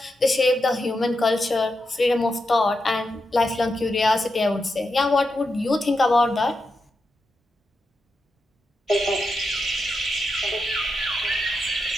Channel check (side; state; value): both; normal; correlation 0.87